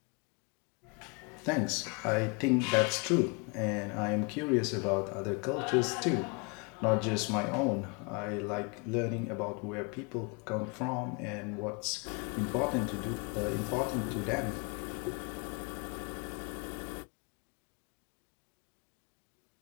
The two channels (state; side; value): quieter; right; 31.8 dB